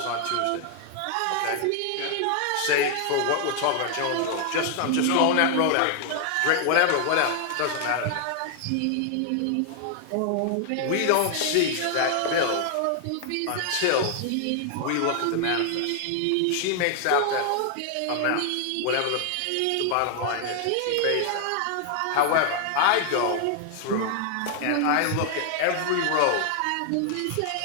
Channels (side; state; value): both; different; correlation 0.00